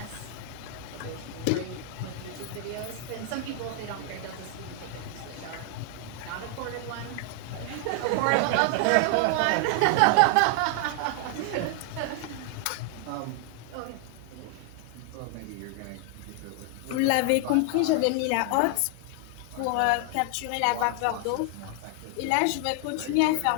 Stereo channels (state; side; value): different; both; correlation 0.00